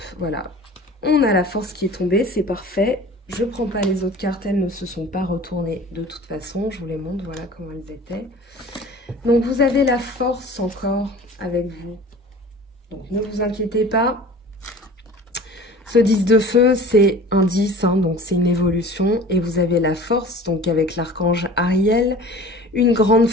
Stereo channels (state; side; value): normal; both; correlation 0.42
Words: voilà. On a la force qui est tombée, c'est parfait. Je ne prends pas les autres cartes, elles ne se sont pas retournées de toute façon. Je vous les montre, voilà comment elles étaient. Donc, vous avez la force encore avec vous. Donc, ne vous inquiétez pas. Ce 10 de feu, c'est un 10, hein, donc c'est une évolution. Et vous avez la force, donc avec l'archange Ariel, une grande